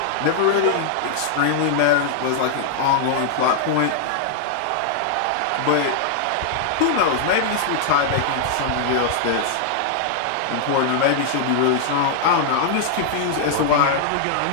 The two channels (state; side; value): different; both; correlation -0.01